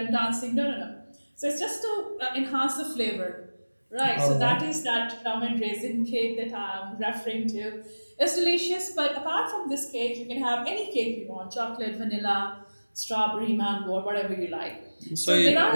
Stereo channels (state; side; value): inverted; both; correlation -1.00